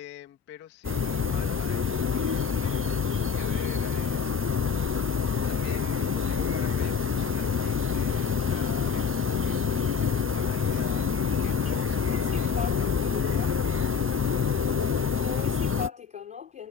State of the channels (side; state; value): right; quieter; 6.1 dB